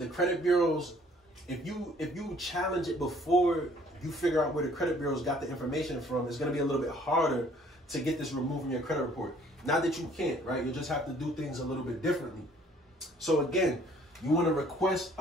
credit bureaus, if you challenge it before you figure out where the credit bureaus got the information from, it's going to be a little bit harder to get this removed from your credit report. Not that you can't, right? You just have to do things a little bit differently. So again, you want to request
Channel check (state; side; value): normal; both; correlation 0.58